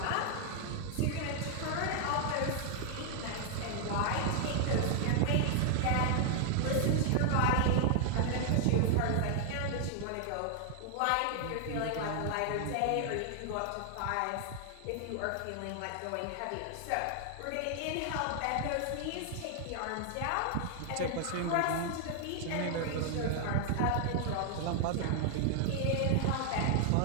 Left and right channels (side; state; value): both; different; correlation 0.00